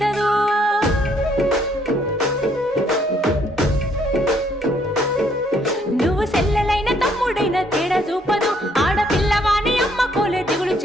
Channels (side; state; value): both; normal; correlation 0.68